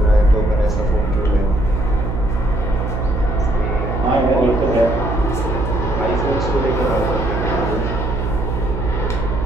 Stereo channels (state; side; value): noise; right; hum, 2 dB below the sound